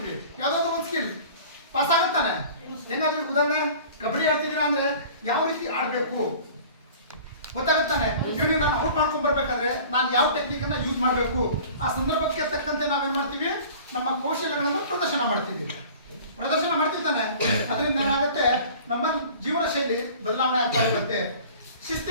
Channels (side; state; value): both; inverted; correlation -0.44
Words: ಯಾವುದಾದ್ರೂ ಒಂದು ಸ್ಕಿಲ್ ಪಾಸ್ ಆಗುತ್ತಾನೆ. ಹೆಂಗಾದ್ರೂ ಉದಾಹರಣೆ ಕಬಡ್ಡಿ ಆಡ್ತಿದ್ದೀರಾ ಅಂದ್ರೆ ಯಾವ ರೀತಿ ಆಡಬೇಕು ಗೊತ್ತಾಗುತ್ತಾನೆ. ಇವನಿಗೆ ನಾನು ಔಟ್ ಮಾಡ್ಕೊಂಡ್ ಬರ್ಬೇಕಾದ್ರೆ ನಾನು ಯಾವ ಟೆಕ್ನಿಕ್ ಅನ್ನ ಯೂಸ್ ಮಾಡಬೇಕು, ಆ ಸಂದರ್ಭಕ್ಕೆ ತಕ್ಕಂತೆ ನಾವೇನ್ ಮಾಡ್ತೀವಿ, ನಮ್ಮ ಕೌಶಲ್ಯಗಳನ್ನು ಪ್ರದರ್ಶನ ಮಾಡ್ತೀವಿ ತಾನೆ. ಅದರಿಂದ ಏನಾಗುತ್ತೆ, ನಮ್ಮ ಜೀವನ ಶೈಲಿ ಬದಲಾವಣೆ ಆಗ್ತಾ ಇರುತ್ತೆ.